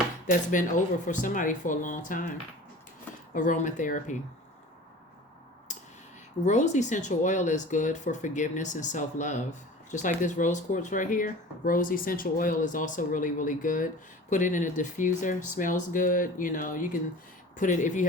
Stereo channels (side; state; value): both; normal; correlation 0.40